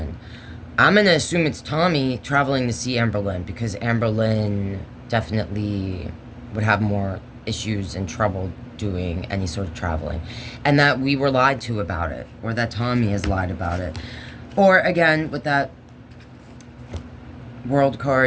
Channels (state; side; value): identical; both; correlation 1.00